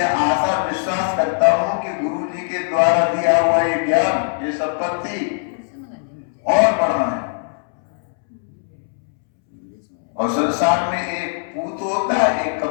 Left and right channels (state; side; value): silent; right; 66 dB below the other